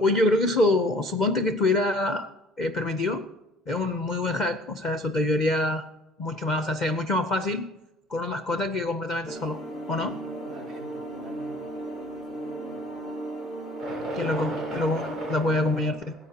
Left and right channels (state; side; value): normal; both; correlation 0.52